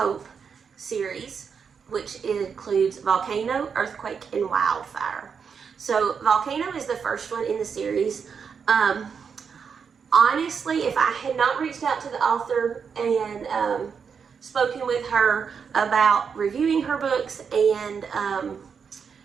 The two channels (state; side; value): quieter; left; 6.4 dB